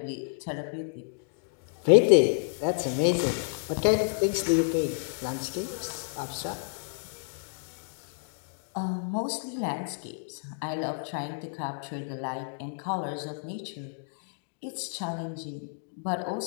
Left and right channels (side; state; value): right; silent; digital silence